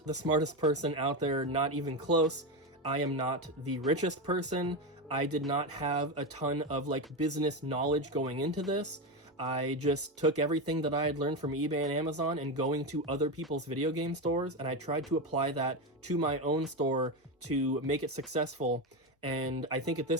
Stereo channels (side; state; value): both; normal; correlation 0.15